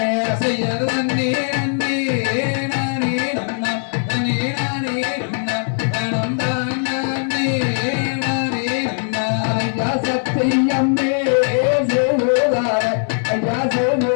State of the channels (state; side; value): silent; right; 65 dB below the other